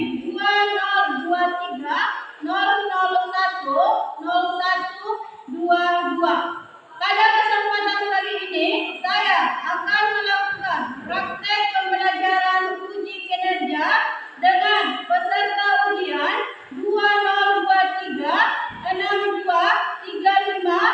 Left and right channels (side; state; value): both; identical; correlation 1.00